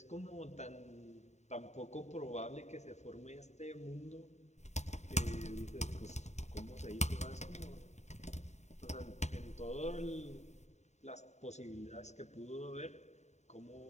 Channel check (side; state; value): right; late; 0.33 ms